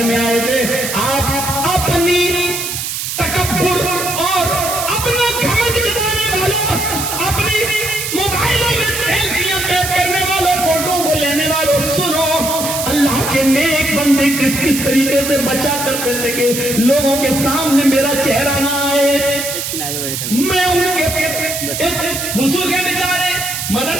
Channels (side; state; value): right; noise; hiss, 4 dB below the sound